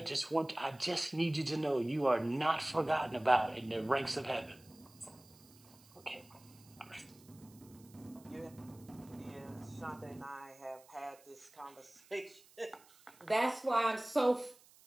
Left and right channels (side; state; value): right; noise; hiss, 25 dB below the sound